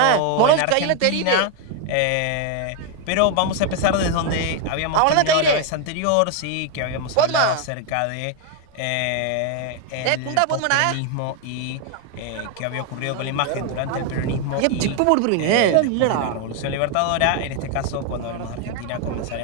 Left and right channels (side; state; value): both; different; correlation 0.01